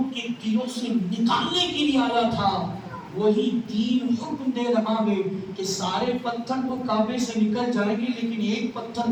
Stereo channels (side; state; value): both; identical; correlation 1.00